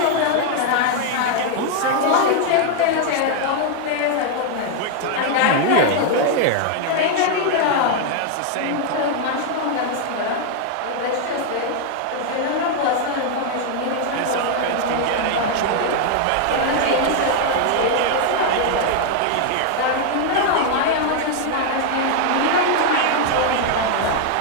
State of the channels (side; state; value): both; different; correlation 0.00